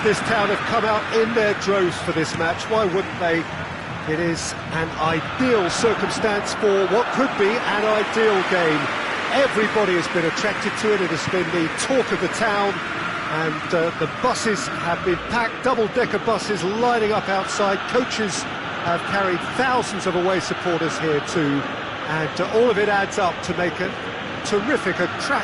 this town have come out in their droves for this match. Why wouldn't they? It is an ideal circumstance for what could be an ideal game. Everybody has been attracted to it. It has been the talk of the town, and the buses have been packed, double-decker buses lining up outside. Coaches have carried thousands of away supporters here too, and all of it adds up to make a terrific, a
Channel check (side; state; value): both; identical; correlation 1.00